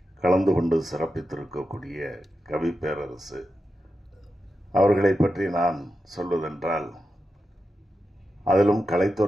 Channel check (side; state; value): both; normal; correlation 0.90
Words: கலந்து கொண்டு சிறப்பித்திருக்கக்கூடிய கவிப்பேரரசு அவர்களை பற்றி நான் சொல்வதென்றால், அதிலும்